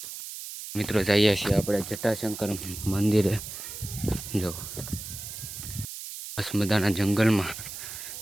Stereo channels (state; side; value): noise; right; hiss, 10 dB below the sound